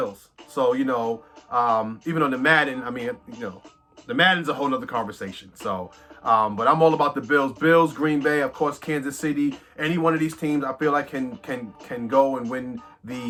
So, even on the Madden, the Madden's a whole nother conversation. So, but I'm all about the Bills. Bills, Green Bay, of course, Kansas City. Any one of these teams, I feel like can go and win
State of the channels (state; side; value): identical; both; correlation 1.00